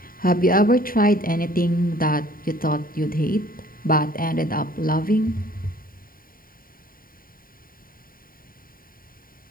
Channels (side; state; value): right; late; 0.41 ms